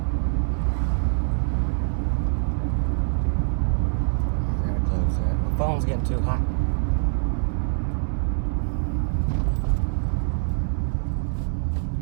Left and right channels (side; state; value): left; silent; digital silence